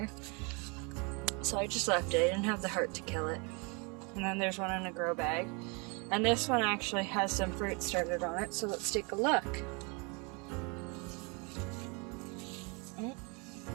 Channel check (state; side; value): quieter; left; 31.6 dB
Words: so I just left it. I didn't have the heart to kill it. And then there's one in a grow bag, and this one actually has some fruit started on it, so let's take a look.